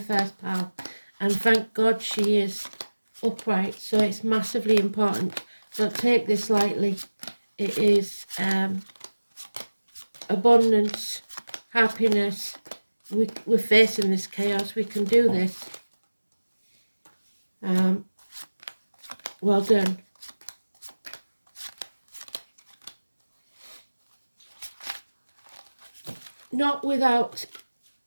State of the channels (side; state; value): both; inverted; correlation -1.00